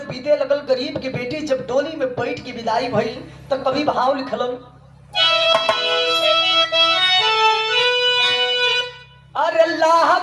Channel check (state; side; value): identical; both; correlation 1.00